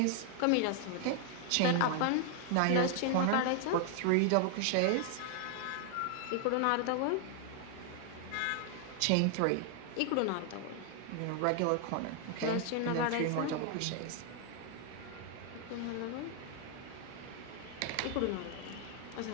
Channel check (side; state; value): both; different; correlation 0.00